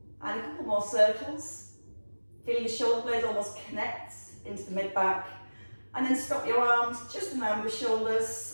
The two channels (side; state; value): both; inverted; correlation -1.00